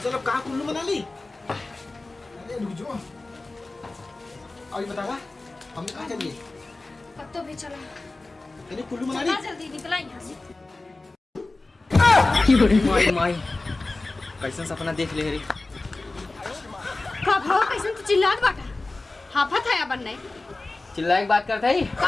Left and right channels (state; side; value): quieter; right; 3.2 dB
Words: चलो कहाँ कुल्लू मना ली अरे रुक जाओ अभी बतावा हम कहाँ चलिए कब तो भी चला तेरे कुल्लू मना चला ली जल्दी निकला यहाँ से। माई माई कैसन सपना देख ले रे का भाव कैसे तू चिल्लात बाटा हाफत है अपन नहीं चिल्लाए के बात करता ही